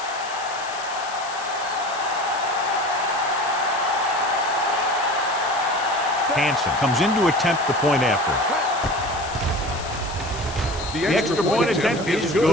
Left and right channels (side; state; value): left; noise; hiss, 13 dB below the sound